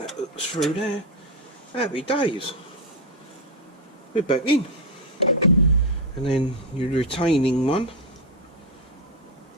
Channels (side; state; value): both; normal; correlation 0.08